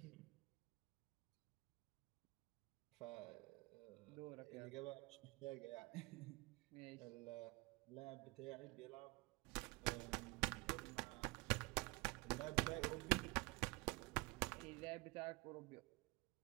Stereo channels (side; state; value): left; quieter; 25.1 dB